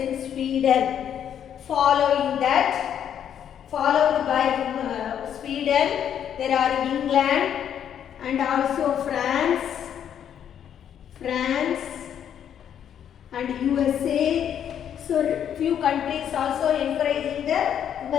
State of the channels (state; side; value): quieter; right; 9.2 dB